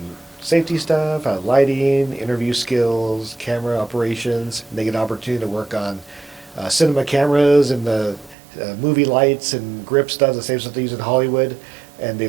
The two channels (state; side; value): drops out; left; at 8.3 s